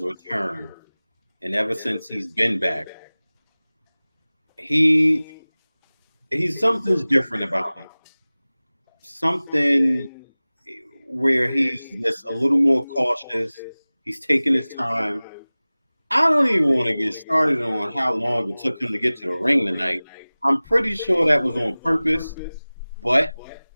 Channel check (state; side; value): inverted; both; correlation -0.99